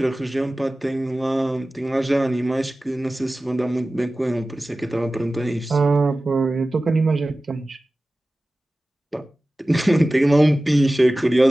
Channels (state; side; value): normal; both; correlation 0.96